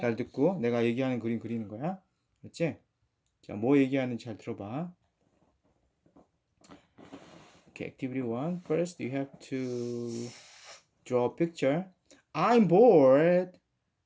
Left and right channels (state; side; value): identical; both; correlation 1.00